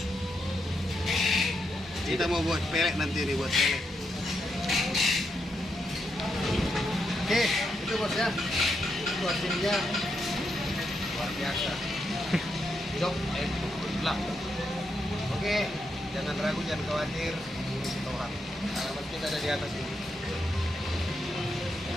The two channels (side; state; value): both; normal; correlation 0.82